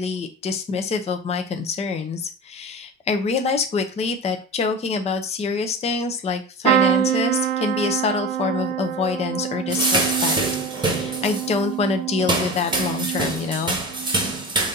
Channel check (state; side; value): normal; both; correlation 0.31